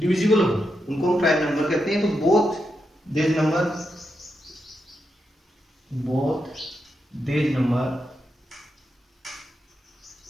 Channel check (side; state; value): both; normal; correlation 0.85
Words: हो उनको हम प्राइम नंबर कहते हैं। तो both these numbers